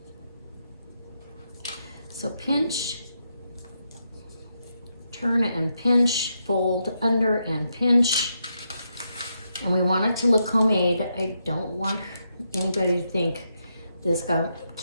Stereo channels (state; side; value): inverted; both; correlation -0.82